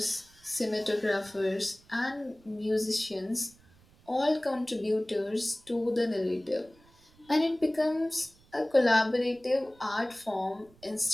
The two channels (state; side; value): noise; right; rumble, 28 dB below the sound